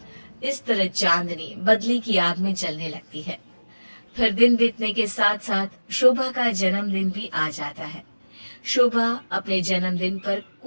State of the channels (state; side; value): inverted; both; correlation -1.00